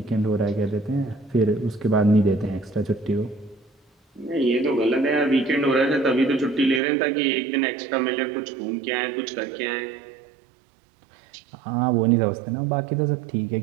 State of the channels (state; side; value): drops out; left; at 6.8 s